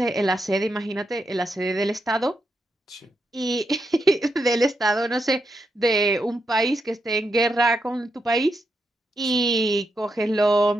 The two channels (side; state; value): both; normal; correlation 0.83